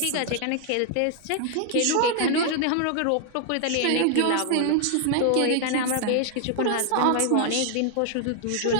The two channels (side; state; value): both; different; correlation 0.00